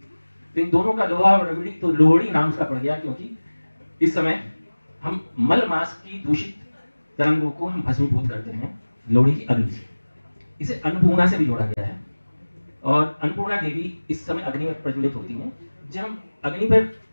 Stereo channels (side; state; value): both; inverted; correlation -1.00